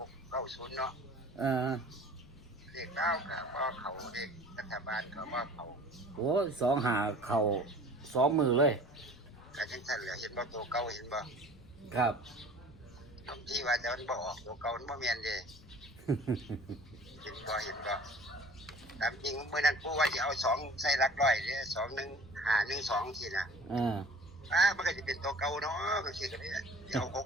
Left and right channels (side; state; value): left; noise; rumble, 21 dB below the sound